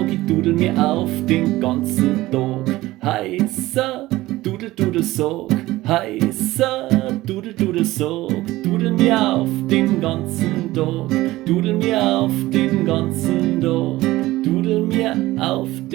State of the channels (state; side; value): quieter; left; 17.6 dB